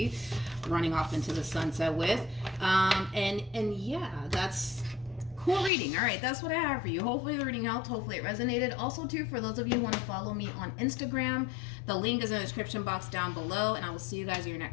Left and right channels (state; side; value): drops out; right; at 5.7 s